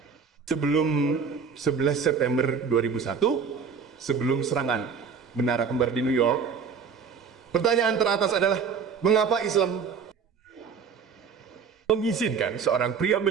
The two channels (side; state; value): left; quieter; 6.1 dB